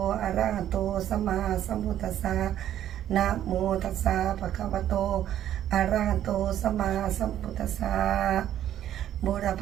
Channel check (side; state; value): left; quieter; 11.4 dB